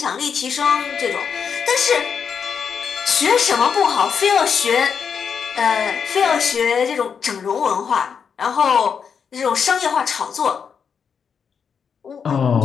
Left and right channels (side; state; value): right; quieter; 6.7 dB